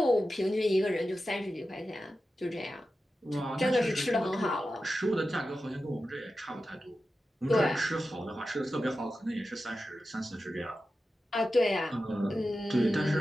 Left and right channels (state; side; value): normal; both; correlation 0.92